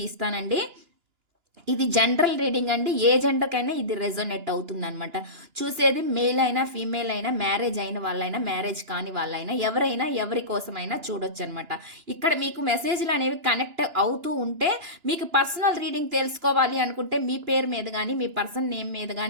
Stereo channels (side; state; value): left; late; 2.9 ms